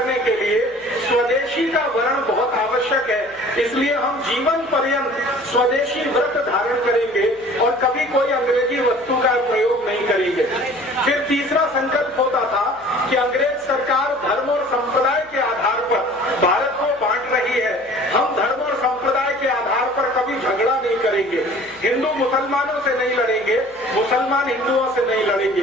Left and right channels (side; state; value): left; noise; hum, 29 dB below the sound